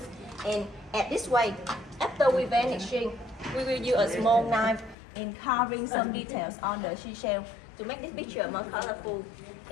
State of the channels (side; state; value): right; drops out; at 5.0 s